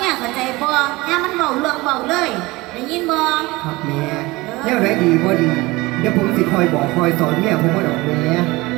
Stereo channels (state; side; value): quieter; left; 21.5 dB